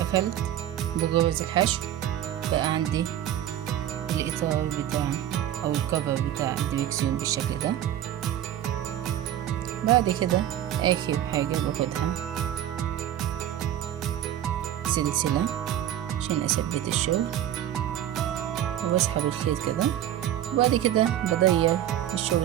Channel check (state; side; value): quieter; left; 11.5 dB